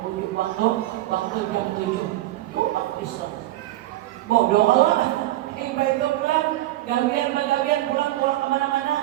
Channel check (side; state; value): left; quieter; 15.9 dB